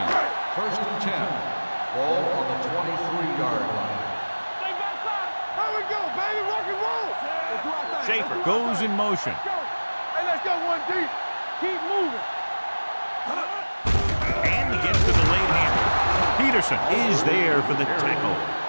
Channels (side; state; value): both; inverted; correlation -1.00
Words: First and 10. Ball on the 23-yard line. Stay backside. Here we go, baby. Rock and roll. Let's do our thing. Schaefer goes in motion. Let's go. Hey, let's go one deep. Keep moving. And he gets to the late handle. Peterson is there for the tackle